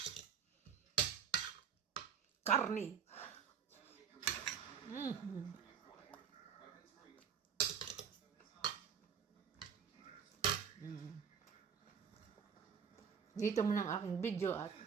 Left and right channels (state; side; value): quieter; left; 7.3 dB